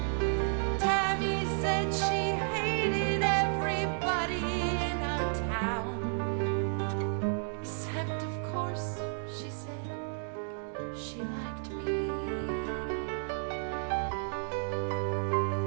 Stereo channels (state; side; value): silent; left; 56 dB below the other